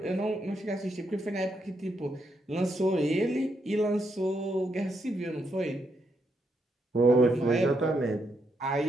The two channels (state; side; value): normal; both; correlation 0.79